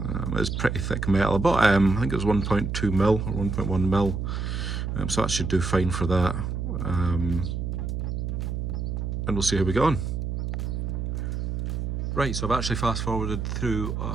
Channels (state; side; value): noise; right; hum, 2 dB below the sound